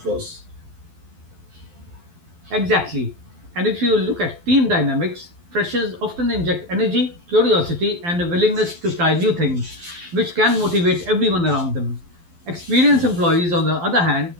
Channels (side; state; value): left; late; 12 ms